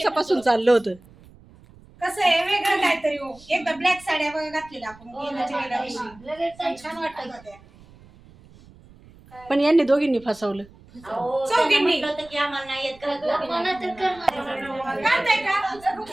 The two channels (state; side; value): noise; right; rumble, 24 dB below the sound